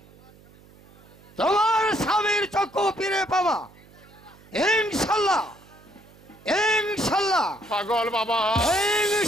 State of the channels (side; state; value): right; noise; hum, 25 dB below the sound